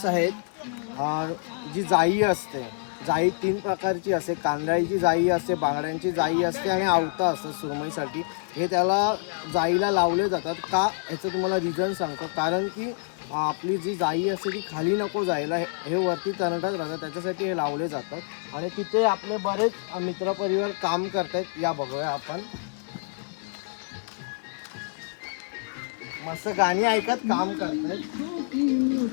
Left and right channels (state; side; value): silent; right; digital silence